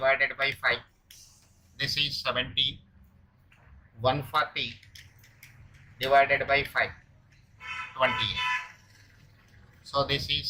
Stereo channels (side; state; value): both; identical; correlation 1.00